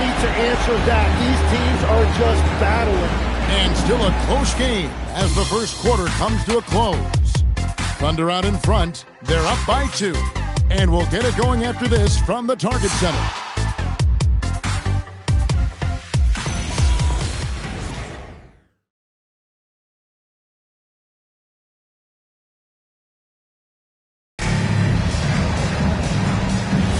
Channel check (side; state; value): both; identical; correlation 1.00